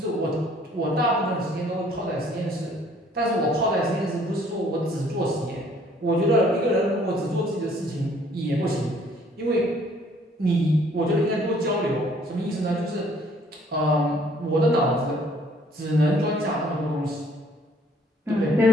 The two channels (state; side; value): normal; both; correlation 0.60